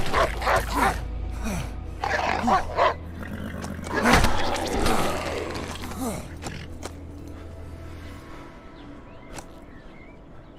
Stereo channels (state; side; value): identical; both; correlation 1.00